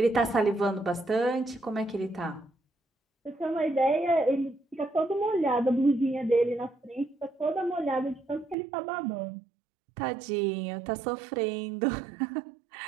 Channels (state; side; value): drops out; left; at 8.6 s